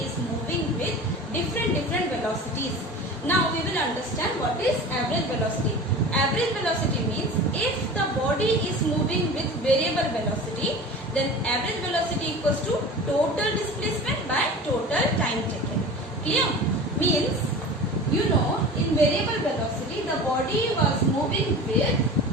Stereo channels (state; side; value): normal; both; correlation 0.36